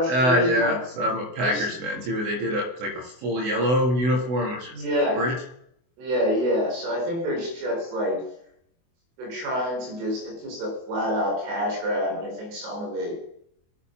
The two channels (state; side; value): late; left; 24 ms